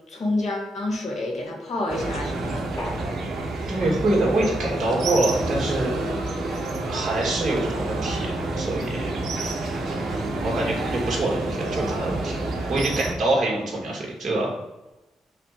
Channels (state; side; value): normal; both; correlation 0.80